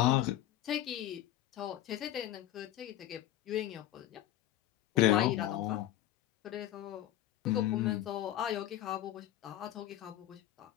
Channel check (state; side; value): quieter; right; 13.3 dB